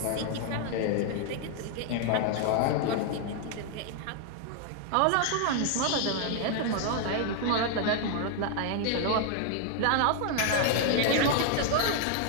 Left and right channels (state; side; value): different; both; correlation 0.00